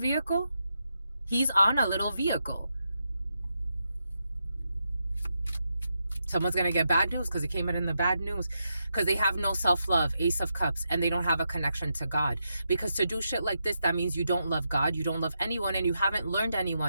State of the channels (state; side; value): inverted; both; correlation -0.84